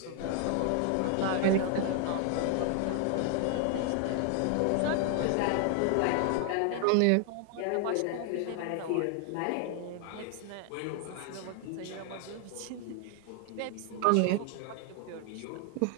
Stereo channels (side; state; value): both; different; correlation 0.00